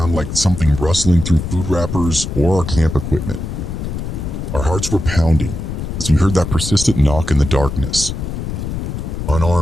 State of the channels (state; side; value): noise; left; rumble, 5 dB below the sound